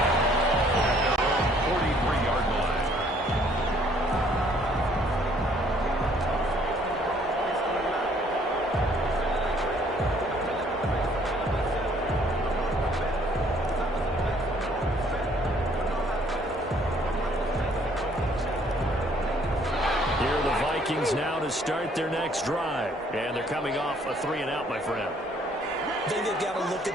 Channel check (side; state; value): both; normal; correlation 0.62